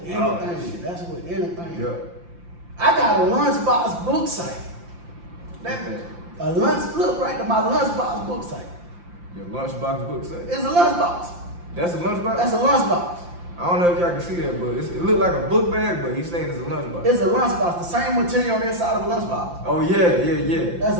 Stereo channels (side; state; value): left; late; 5.8 ms